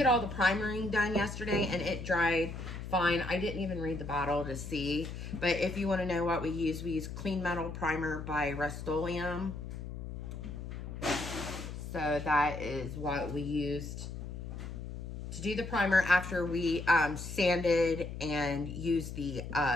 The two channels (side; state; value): left; noise; hum, 8 dB below the sound